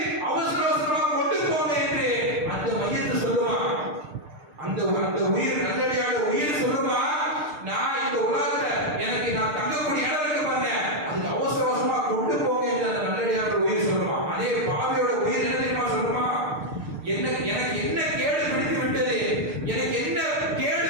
அவசர அவசரமா கொண்டு போங்க என்று அந்த மையத்தை சொல்லுமா. அந்த உயிர் நல்லடியார உயிர் சொல்லுமா, நான் இந்த உலகத்துல எனக்கு நான் தங்கக்கூடிய இடம் இருக்கு பாருங்க, அதுக்கு அவசர அவசரமா கொண்டு போங்க என்று அந்த நல்லடியார உயிர் சொல்லுமா. அதே பாவியோட உயிர் என்ன தெரியுமா சொல்லுமா? எனக்கு என்ன கேடு பிடித்து விட்டது, எனக்கு என்ன கேடு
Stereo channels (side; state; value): left; late; 6.6 ms